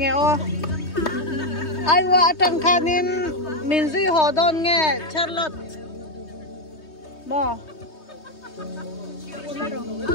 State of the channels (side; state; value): right; late; 3.2 ms